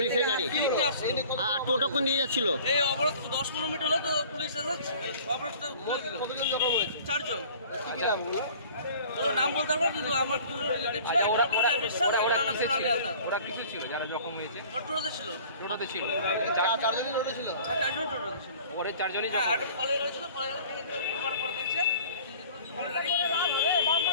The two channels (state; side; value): inverted; both; correlation -0.47